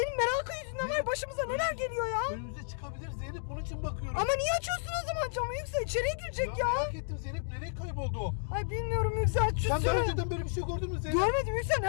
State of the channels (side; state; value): right; silent; digital silence